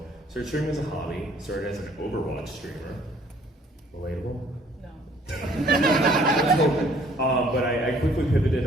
started streaming as a hobby, started as an Overwatch streamer. Relatable? No. But I quickly pivoted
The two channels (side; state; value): both; normal; correlation 0.59